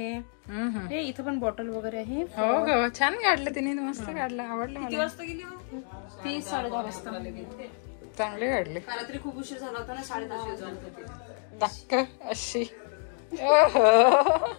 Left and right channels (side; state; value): right; silent; 57 dB below the other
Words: हे इथं पण बॉटल वगैरे आहे. हो हो, छान काढलं तिने, मस्त काढलं, आवडलं मला. किती वाजता गेली? 10:30 वाजता. चांगली काढली. रात्री खूप उशीर झाला होता ना, 10:30 टक्क अशी.